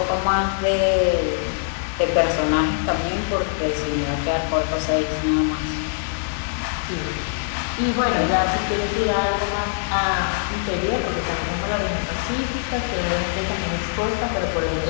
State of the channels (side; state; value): right; silent; 64 dB below the other